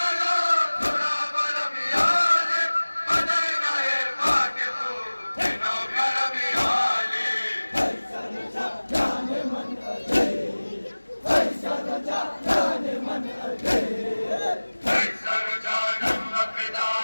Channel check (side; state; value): both; inverted; correlation -1.00